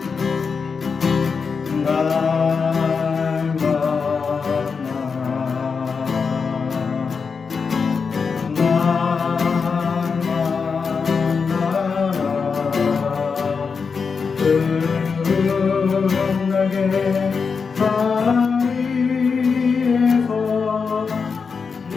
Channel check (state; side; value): quieter; right; 5.4 dB